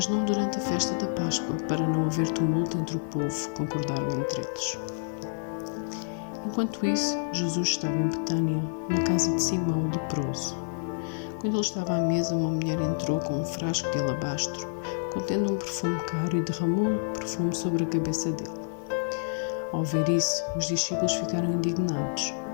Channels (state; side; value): silent; right; digital silence